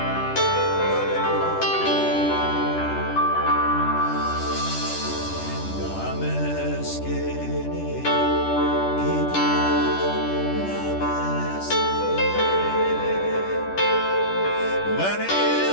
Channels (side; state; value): right; late; 10 ms